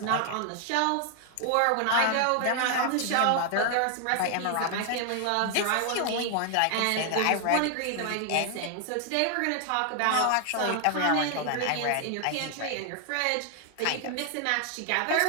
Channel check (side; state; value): both; different; correlation 0.00